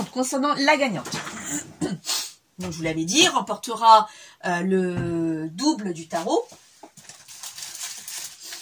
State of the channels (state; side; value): identical; both; correlation 1.00